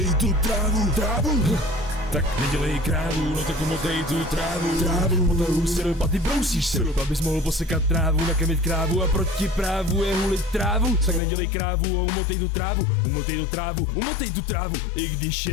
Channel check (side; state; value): right; drops out; at 11.2 s